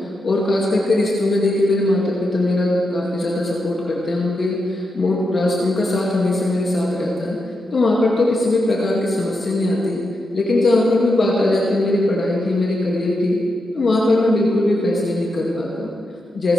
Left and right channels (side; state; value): both; normal; correlation 0.85